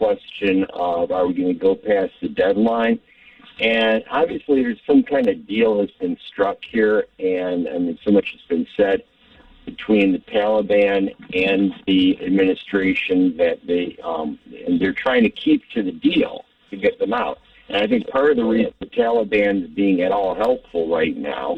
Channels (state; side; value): identical; both; correlation 1.00